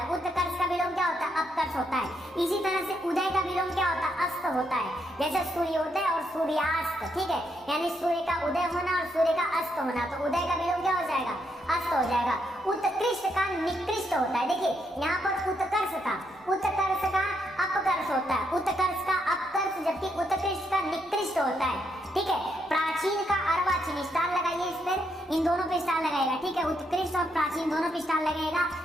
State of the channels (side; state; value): both; normal; correlation 0.78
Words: उत्कर्ष का विलोम क्या होता है? अपकर्ष होता है। इसी तरह से उदय का विलोम क्या होता है? अस्त होता है। जैसे सूर्योदय और सूर्यास्त। ठीक है, यानी सूर्य का उदय होना और सूर्य का अस्त होना। तो उदय का विलोम क्या हो जाएगा? अस्त हो जाएगा। उत्कृष्ट का निकृष्ट होता है। देखिए यहाँ पर उत्कर्ष का अपकर्ष होता है। उत्कर्ष का अपकर्ष, जबकि उत्कृष्ट का निकृष्ट होता है। ठीक है, प्राचीन का अर्वाचीन। स्टार लगाइए इस पर, इन दोनों पे स्टार लगाएगा। ठीक है, उत्कृष्ट और प्राचीन दोनों पे स्टार लगेगा।